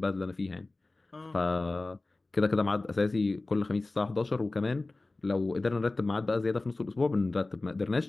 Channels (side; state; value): right; quieter; 3.2 dB